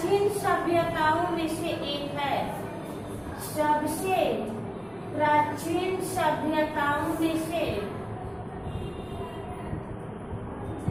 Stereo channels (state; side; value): identical; both; correlation 1.00